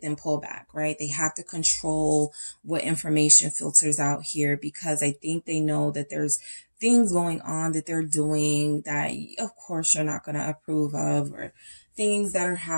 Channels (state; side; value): inverted; both; correlation -1.00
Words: then pull back, right? They have to control what information filters out here because I think they know that there's things going on that they're doing that, of course, you're not going to approve of, or things that are